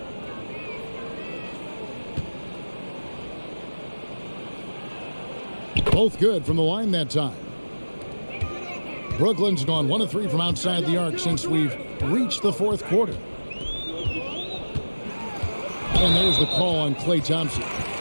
Both good from the line that time. Brooklyn's gone 1 of 3 from outside the arc since we've reached the fourth quarter. And there's the call on Klay Thompson.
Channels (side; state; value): both; inverted; correlation -1.00